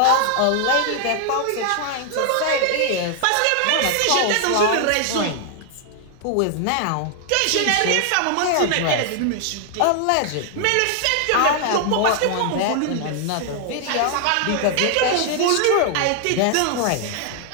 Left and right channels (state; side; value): different; both; correlation 0.00